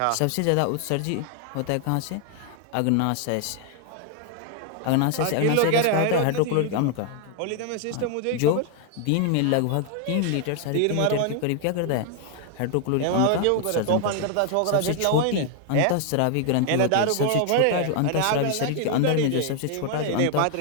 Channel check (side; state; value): both; different; correlation 0.00